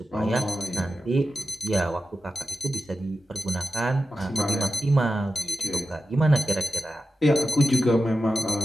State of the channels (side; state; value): both; normal; correlation 0.92